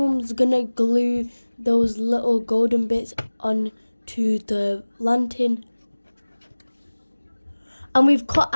gonna glue those little golden bits onto the lantern. And we've cut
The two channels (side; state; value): both; inverted; correlation -1.00